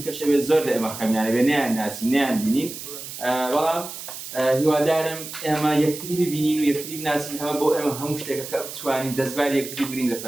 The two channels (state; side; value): noise; right; hiss, 10 dB below the sound